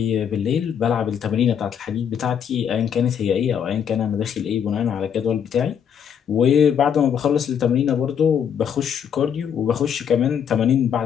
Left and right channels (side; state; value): right; quieter; 8.1 dB